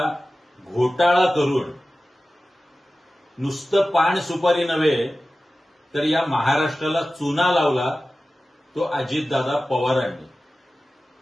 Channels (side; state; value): both; normal; correlation 0.96